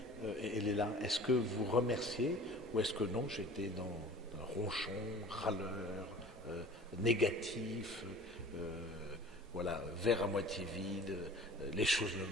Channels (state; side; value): normal; both; correlation 0.43